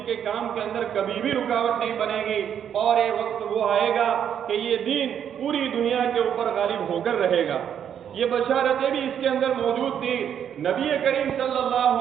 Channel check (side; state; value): left; quieter; 8.9 dB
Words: کے کام کے اندر کبھی بھی رکاوٹ نہیں بنے گی، اور یہ وقت وہ آئے گا کہ یہ دین پوری دنیا کے اوپر غالب ہو کر رہے گا۔ یہ بشارتیں بھی اس کے اندر موجود تھی۔ نبی کریم صلی اللہ